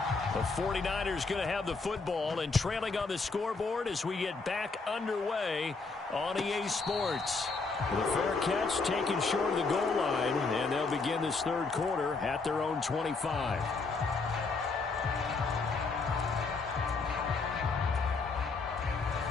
The 49ers going to have the football and trailing on the scoreboard as we get back underway on EA Sports. The fair catch taken short of the goal line, and they'll begin this 3rd quarter at their own 25.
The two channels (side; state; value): right; quieter; 4.1 dB